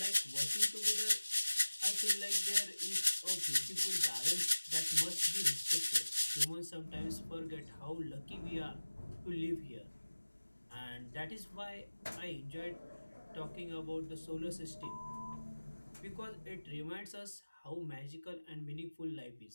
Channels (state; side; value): inverted; both; correlation -1.00